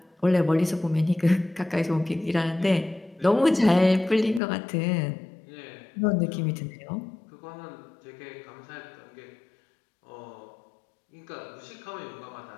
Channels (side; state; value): right; drops out; at 4.4 s